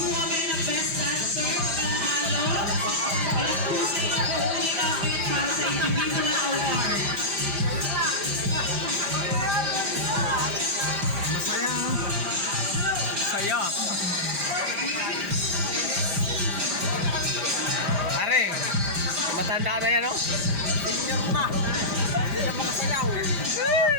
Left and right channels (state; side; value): late; left; 5.0 ms